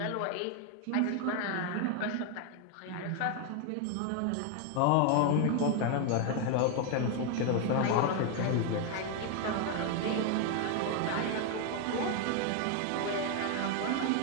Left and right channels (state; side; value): different; both; correlation 0.00